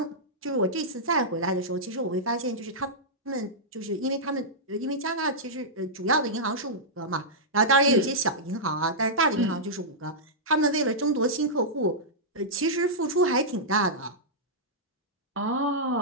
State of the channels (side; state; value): both; normal; correlation -0.11